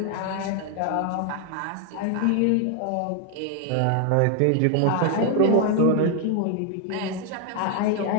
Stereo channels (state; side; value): different; both; correlation 0.00